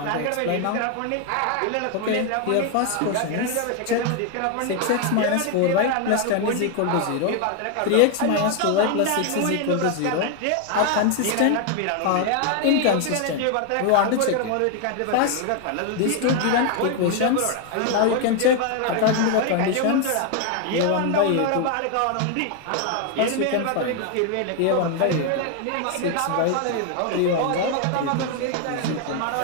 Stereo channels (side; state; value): both; different; correlation 0.01